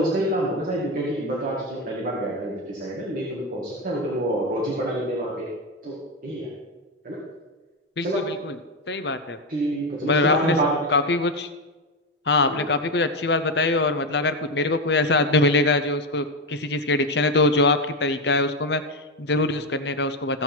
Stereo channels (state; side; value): normal; both; correlation 0.12